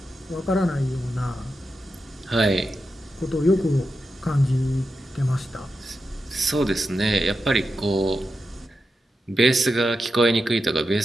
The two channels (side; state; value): both; normal; correlation 0.89